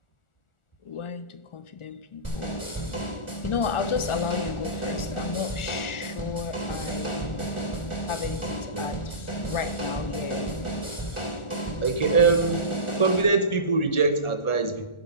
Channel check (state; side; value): late; right; 1.4 ms